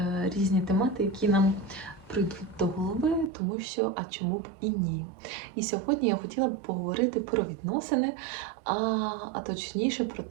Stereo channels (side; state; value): left; drops out; at 3.3 s